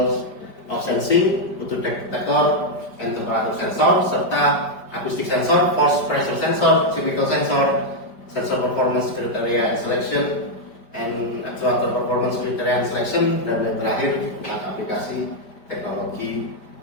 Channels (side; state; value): right; late; 5.1 ms